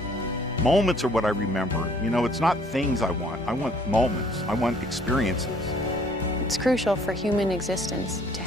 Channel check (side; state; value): both; normal; correlation 0.59